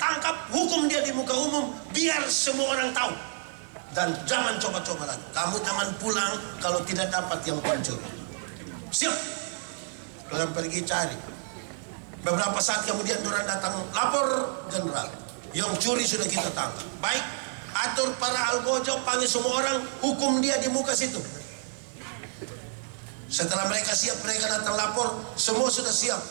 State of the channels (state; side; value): silent; left; 57 dB below the other